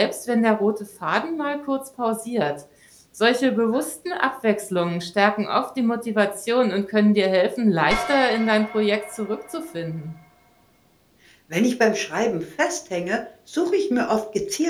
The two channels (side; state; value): both; identical; correlation 1.00